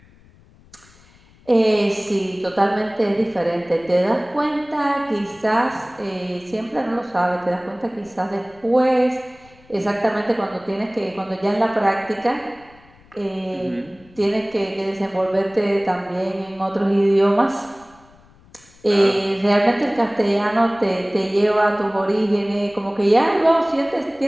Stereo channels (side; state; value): left; noise; rumble, 27 dB below the sound